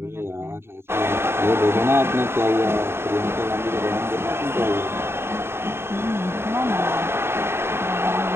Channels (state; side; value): late; left; 0.12 ms